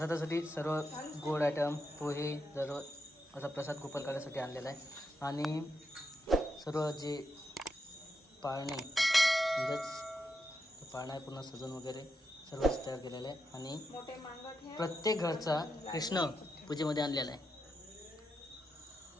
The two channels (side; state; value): both; normal; correlation 0.84